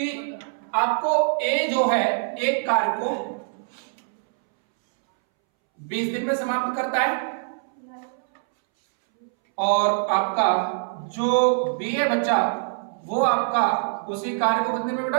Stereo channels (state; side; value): silent; left; 63 dB below the other